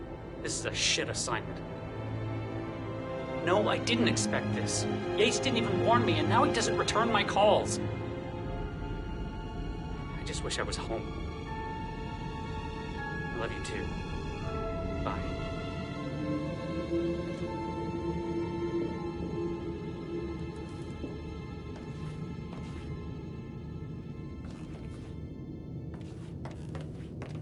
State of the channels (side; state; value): both; identical; correlation 1.00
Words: This is a shit assignment. No, I didn't expect this. Yates didn't even warn me, and now he doesn't return my calls. I just wish I was home. I love you too. Bye.